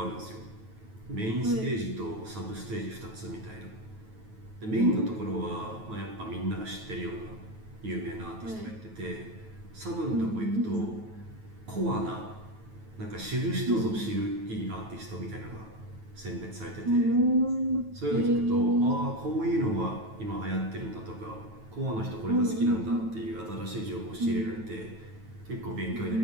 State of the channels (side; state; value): left; late; 9.2 ms